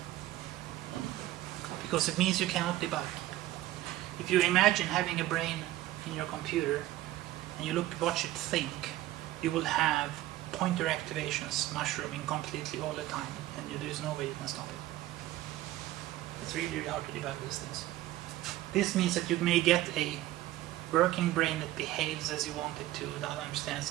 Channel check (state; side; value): quieter; left; 15.3 dB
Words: because it means you cannot debug. If you imagine having a brain in your computer and you watch it think, you will have pointer activations mushrooming completely all the time, and there is no way you can stop it. It's really, really hard to debug these things. This means that you may get a working brain that behaves as you want it to, that